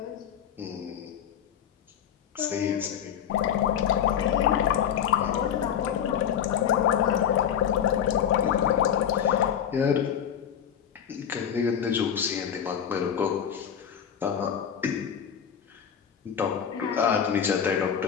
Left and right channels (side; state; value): right; quieter; 8.7 dB